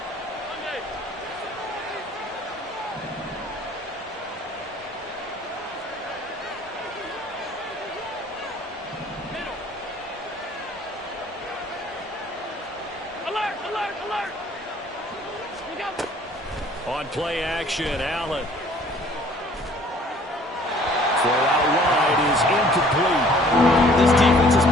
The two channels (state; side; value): normal; both; correlation 0.55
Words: On play action, Allen. Throw out wide is incomplete. This defense has